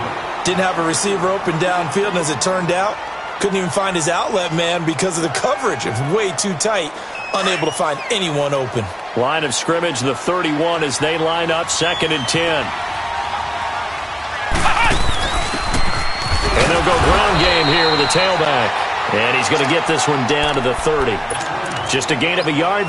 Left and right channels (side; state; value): both; identical; correlation 1.00